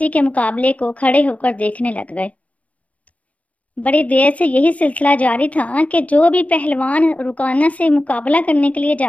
के मुकाबले को खड़े होकर देखने लग गए। बड़ी देर से यही सिलसिला जारी था कि जो भी पहलवान रुकाना से मुकाबला करने के लिए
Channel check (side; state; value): right; late; 0.068 ms